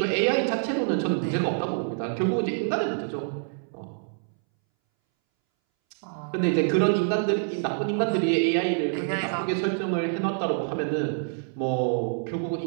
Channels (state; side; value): silent; left; 61 dB below the other